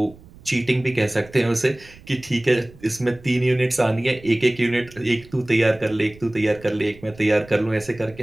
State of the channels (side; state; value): right; noise; rumble, 22 dB below the sound